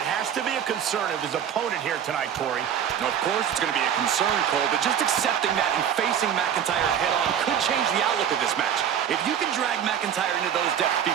has to be a concern of his opponent here tonight, Corey. Now, of course, it's going to be a concern, Cole, but just accepting that and facing McIntyre head-on could change the outlook of this match. If you can drag McIntyre into those depths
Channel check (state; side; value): quieter; left; 9.0 dB